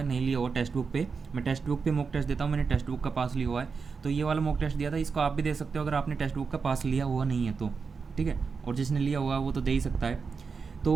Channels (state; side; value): quieter; left; 5.2 dB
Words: नहीं लिया हुआ टेक्स्ट बुक पे, मैं टेक्स्ट बुक पे मॉक टेस्ट देता हूँ, मैंने टेक्स्ट बुक का पास लिया हुआ है तो ये वाला मॉक टेस्ट दिया था। इसको आप भी दे सकते हो अगर आपने टेक्स्ट बुक का पास लिया हुआ नहीं है तो, ठीक है। और जिसने लिया हुआ वो तो दे ही सकता है।